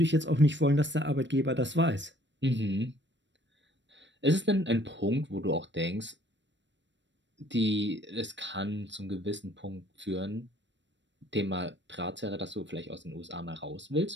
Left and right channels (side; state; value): left; late; 0.53 ms